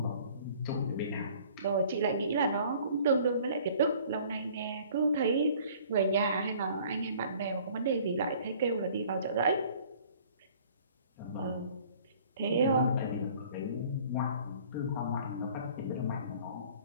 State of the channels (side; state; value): both; inverted; correlation -0.53